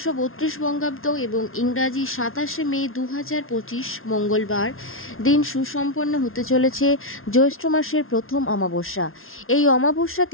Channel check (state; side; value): late; right; 0.61 ms